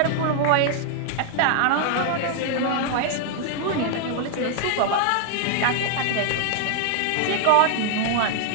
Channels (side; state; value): both; different; correlation 0.00